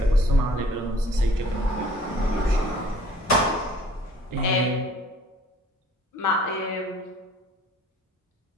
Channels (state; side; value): normal; both; correlation 0.53